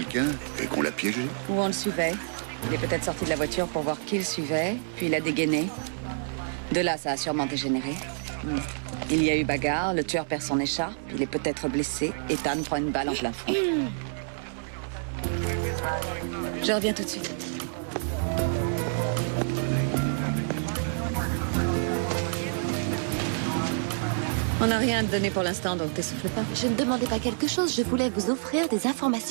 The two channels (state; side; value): silent; left; 59 dB below the other